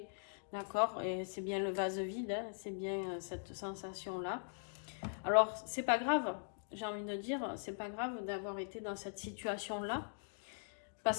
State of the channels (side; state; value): right; silent; digital silence